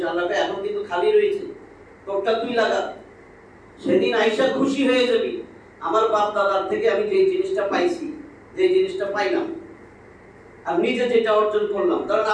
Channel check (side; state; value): both; identical; correlation 1.00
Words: আল্লাহকে এখন কিন্তু খালি রয়েছে, তোরটা তুই লাগা। সেদিন আইসা খুশি হয়ে যাবি, আমার বাপ দাদার থেকে আমি যে জিনিসটা পাইছি, যে জিনিসটা পাইলাম, আর নিজে যেটা অর্জন করলাম। ধরেন